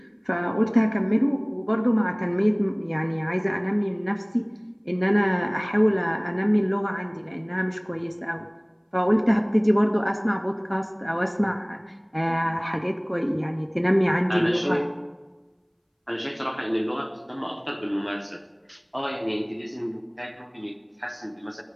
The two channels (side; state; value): both; identical; correlation 1.00